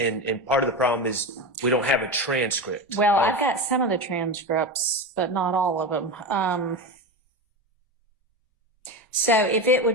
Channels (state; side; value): normal; both; correlation 0.21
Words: part of the problem is we don't have a transcript. Well, I've got some of the transcripts, but not all of them. So if it